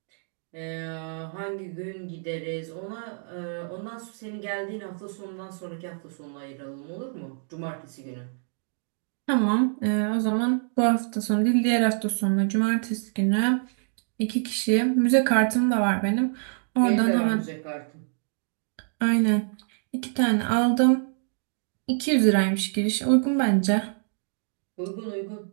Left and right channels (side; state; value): left; silent; digital silence